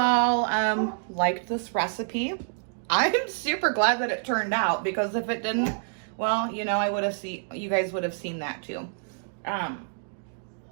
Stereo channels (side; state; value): left; silent; digital silence